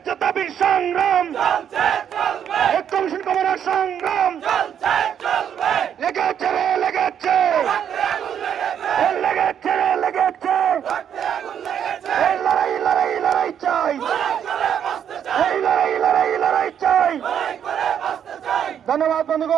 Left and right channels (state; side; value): quieter; left; 8.9 dB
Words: দাবির সংগ্রাম কমিশন কমানোর সংগ্রাম লেগেছে রে লেগেছে লেগেছে রে লেগেছে এই লড়াই লড়াই লড়াই চাই এই লড়াই লড়াই লড়াই চাই। ধন্যবাদ